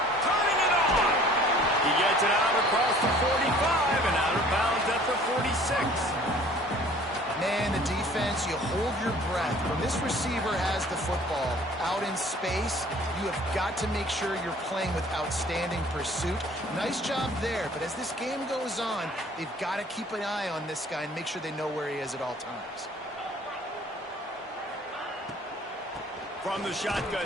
Turning it on! He gets it out across the 45 and out of bounds at the 46. Man, the defense, you hold your breath. When this receiver has the football out in space, you have got to make sure you're playing with outstanding pursuit. Nice job there, but as this game goes on, they've got to keep an eye on this guy and make sure they know where he is at all times. From the shotgun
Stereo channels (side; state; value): both; normal; correlation 0.52